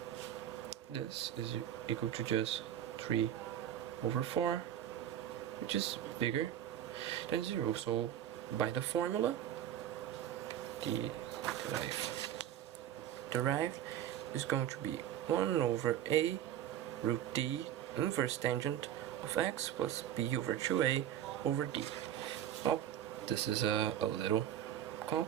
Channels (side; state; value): left; quieter; 11.0 dB